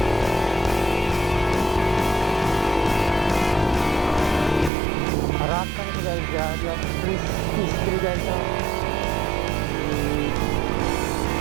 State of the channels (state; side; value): drops out; left; at 4.7 s